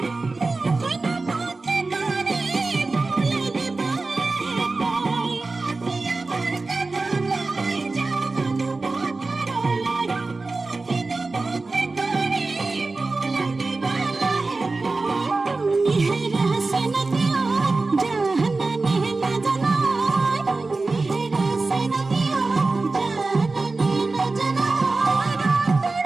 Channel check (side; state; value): left; quieter; 3.6 dB